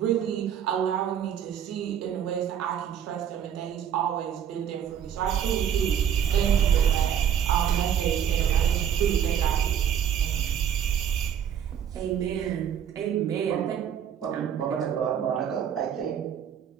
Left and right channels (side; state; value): left; quieter; 9.0 dB